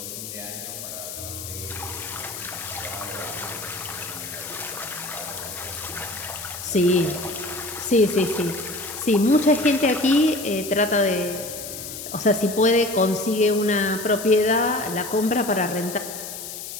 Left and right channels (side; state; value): left; noise; hiss, 9 dB below the sound